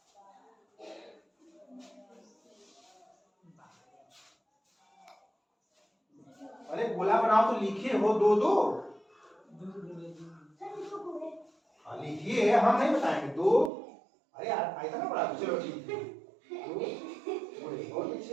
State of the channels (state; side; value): drops out; left; at 13.7 s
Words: अरे गोला बनाओ तो लिखे हो 2-2। लिखिए, हम नहीं बताएंगे 2। अरे यार आएगा ना बड़ा। चलो ठीक है 2 बहुत